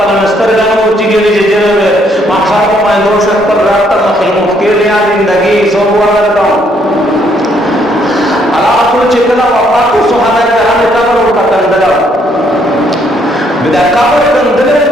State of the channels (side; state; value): both; normal; correlation 0.69